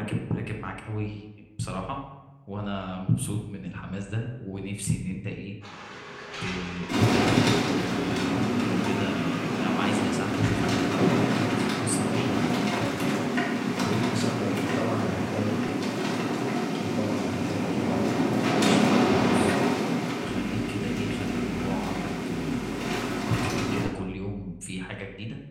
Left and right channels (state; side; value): identical; both; correlation 1.00